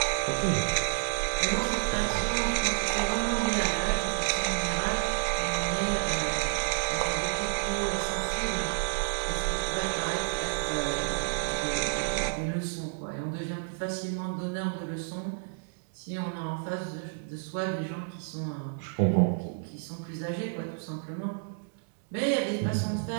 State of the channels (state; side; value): silent; left; digital silence